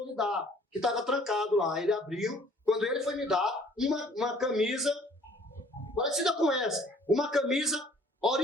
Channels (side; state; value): both; normal; correlation 0.56